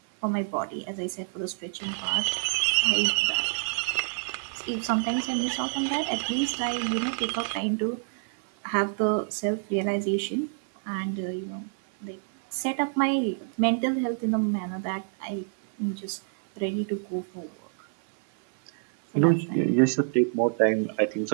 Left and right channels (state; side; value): silent; left; 60 dB below the other